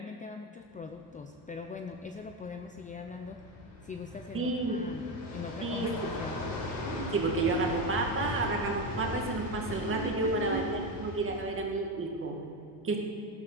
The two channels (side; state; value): both; normal; correlation 0.14